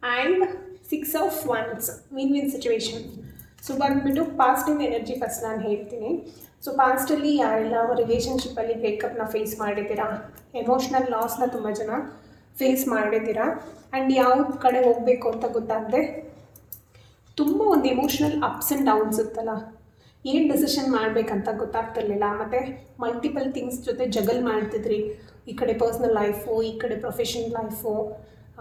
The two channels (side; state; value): both; identical; correlation 1.00